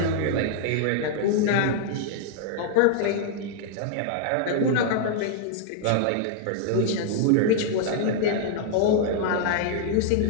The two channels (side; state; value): both; different; correlation -0.01